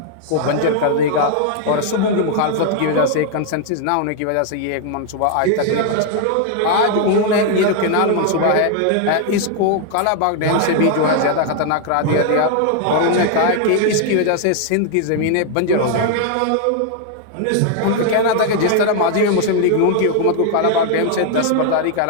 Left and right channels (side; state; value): both; different; correlation 0.00